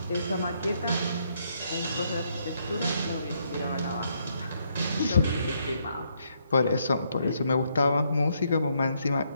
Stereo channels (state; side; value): inverted; both; correlation -0.74